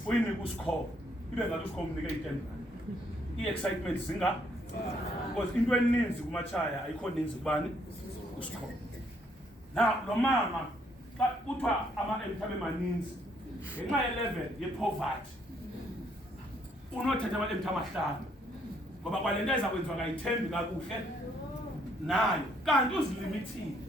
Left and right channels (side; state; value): both; normal; correlation 0.69